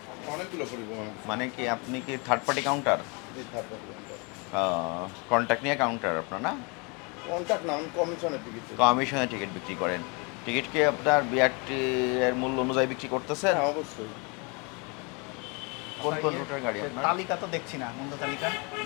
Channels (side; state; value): right; quieter; 31.4 dB